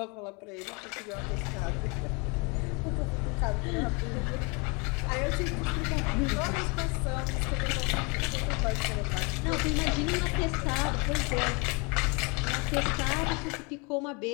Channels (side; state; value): right; quieter; 30.9 dB